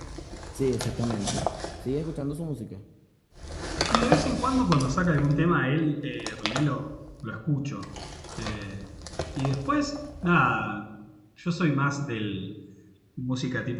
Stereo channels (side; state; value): both; identical; correlation 1.00